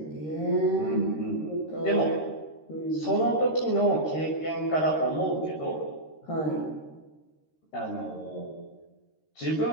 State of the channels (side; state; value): right; late; 13 ms